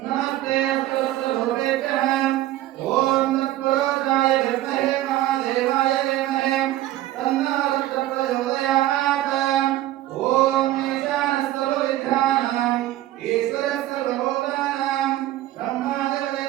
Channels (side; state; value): left; quieter; 14.7 dB